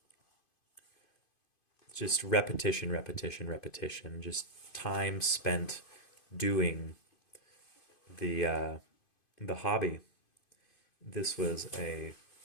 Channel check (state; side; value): late; right; 2.5 ms